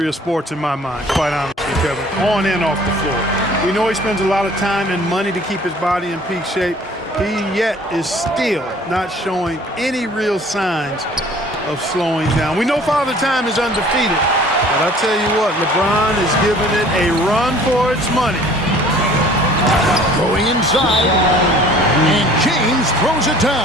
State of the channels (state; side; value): normal; both; correlation 0.51